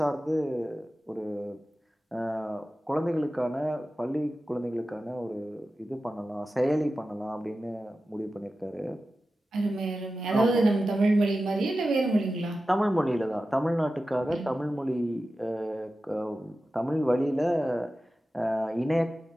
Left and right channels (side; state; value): both; normal; correlation 0.93